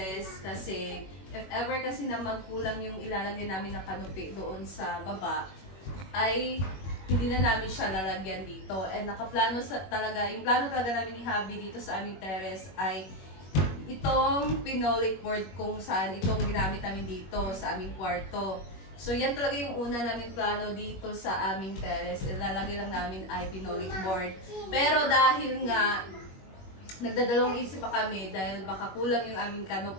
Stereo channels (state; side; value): late; right; 21 ms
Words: kasi if ever kasi na magkulang yung ilalagay namin ng canopy doon sa baba, ay hindi na namin siya lalagyan dito. And nakaplano talaga, yung plano talaga namin ni Habi dito sa aming terrace ay itong pinolik board kung saan itong ginamit namin dito sa aming kwarto. So yan talaga yung una namin plano dito sa aming terrace. Ilalagay lang namin ay pinolik board. Pero dahil nga nagdadalawang isip pa kami dahil baka kulang yung aming